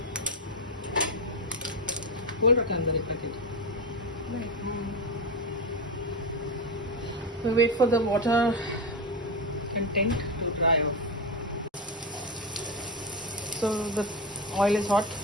Hold it under it, packet. We wait for the water content to dry off. So the oil is hot.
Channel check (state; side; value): normal; both; correlation 0.16